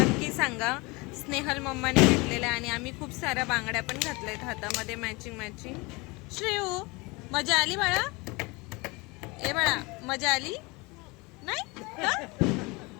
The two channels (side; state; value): right; quieter; 25.6 dB